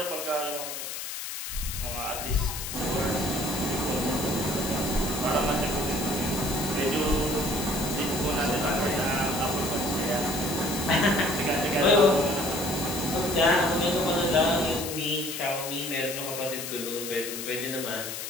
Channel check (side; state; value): left; noise; hiss, 6 dB below the sound